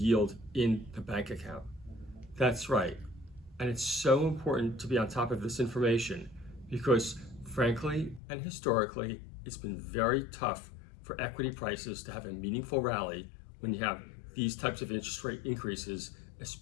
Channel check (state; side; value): drops out; right; at 8.2 s